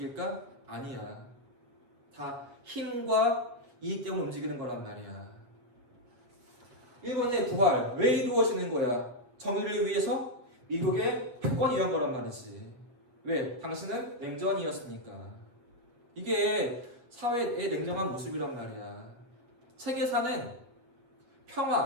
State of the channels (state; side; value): late; left; 7.9 ms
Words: 아니야. 다 힘과 이익 때문에 움직이는 거란 말이야. 일본의 부활 왜 이루어지는 거야? 정의를 위해서? 미국의 패권을 위한 거란 말이지. 왜? 당신은 냉전이었으니까. 이게 사회의 냉정한 모습이란 말이야. 세계사는